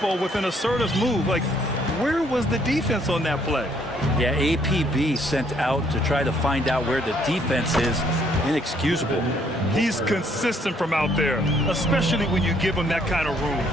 with an assertive move. Like, where was the defense on that play? Yeah, APB sent out to try to find out where the defense is. Inexcusable. He's consistent from out there, especially when you give him that kind of room.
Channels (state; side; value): normal; both; correlation 0.66